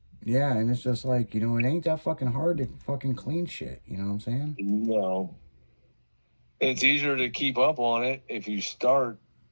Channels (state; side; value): inverted; both; correlation -1.00